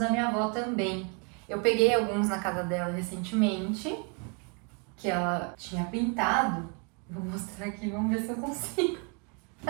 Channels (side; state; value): left; quieter; 35.1 dB